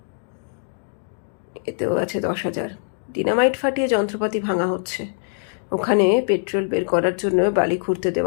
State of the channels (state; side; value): silent; right; digital silence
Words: এতেও আছে 10,000। ডিনামাইট ফাটিয়ে যন্ত্রপাতি ভাঙা হচ্ছে, ওখানে পেট্রোল বের করার জন্য বালি খুঁড়তে